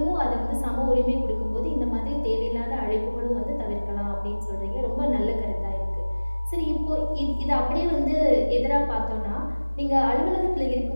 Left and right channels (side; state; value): both; inverted; correlation -1.00